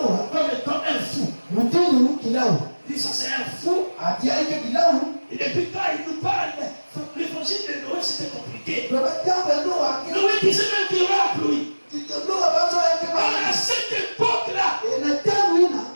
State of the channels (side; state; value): both; inverted; correlation -1.00